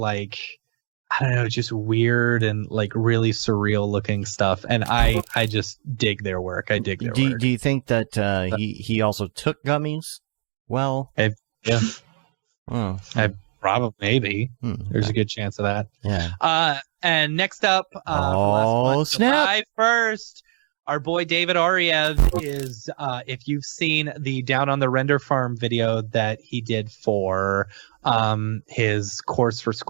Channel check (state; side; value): silent; left; digital silence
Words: I don't know, just weird and like really surreal looking stuff, and I just dig their work. I dig their work. Do you think that he also took gummies? Well, yeah. Oh, I probably maybe. There's a good chance of that. Yeah. And next up, July 1st, our boy David Ariev is, if you've seen the Down on the Render Farm video that he did for his course for